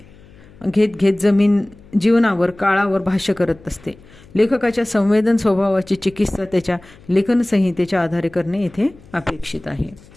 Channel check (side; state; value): left; noise; hum, 24 dB below the sound